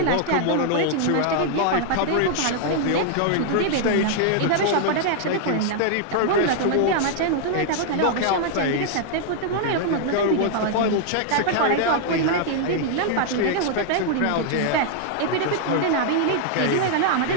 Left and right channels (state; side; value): different; both; correlation 0.00